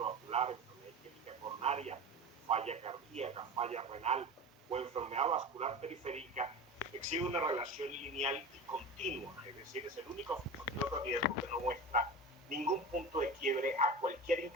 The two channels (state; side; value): normal; both; correlation 0.30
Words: enfermedad isquémica coronaria, falla cardíaca, falla renal o enfermedad vascular periférica, exhibe una relación lineal y continua, es decir, es el único factor de riesgo que no muestra ningún punto de quiebre a cualquier